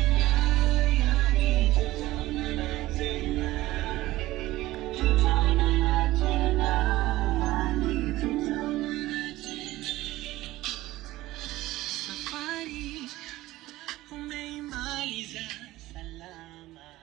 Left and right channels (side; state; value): left; quieter; 17.1 dB